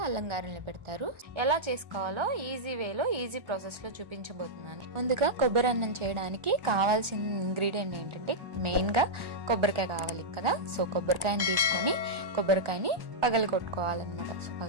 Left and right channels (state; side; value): late; left; 1.4 ms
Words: అల్లం గారెల్ని పెడతారు. ఎలా చేసుకోవాలో ఈజీ వేలో ఈజీ ప్రాసెస్ లో చూపించబోతున్నాను. ముందుగా కొబ్బరి అన్నం చేయడానికి కావాల్సిన ఇంగ్రీడియంట్ ఏంటంటే మెయిన్ గా కొబ్బరికాయ కావాలి కదా. సో కొబ్బరికాయని తీసుకొని కొబ్బరికాయని పగలగొట్టుకోవాలన్నమాట. సో